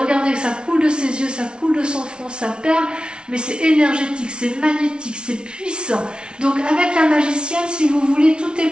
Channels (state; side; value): late; left; 0.056 ms